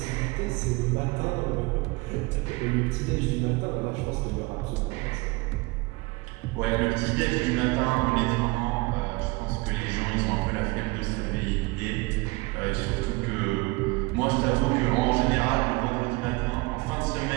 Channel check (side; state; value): left; quieter; 25.1 dB